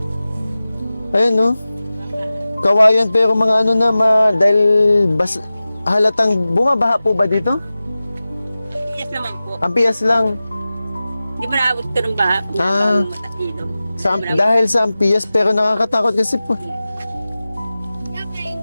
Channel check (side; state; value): both; inverted; correlation -0.96